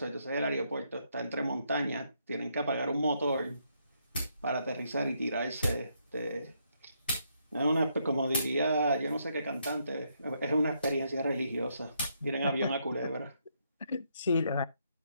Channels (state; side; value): inverted; both; correlation -0.76